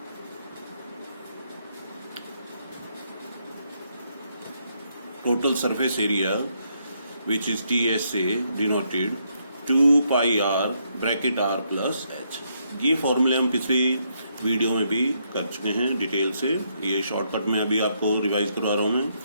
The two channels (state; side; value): inverted; both; correlation -0.76